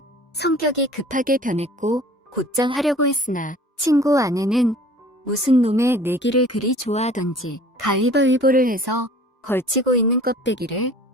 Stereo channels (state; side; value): normal; both; correlation 0.48